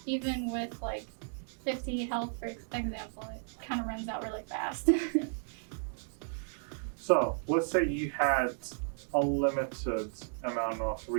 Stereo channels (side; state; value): left; silent; 55 dB below the other